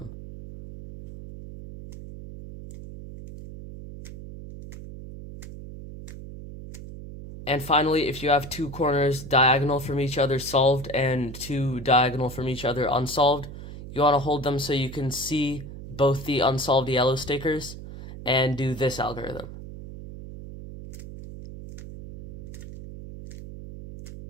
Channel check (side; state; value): right; noise; hum, 12 dB below the sound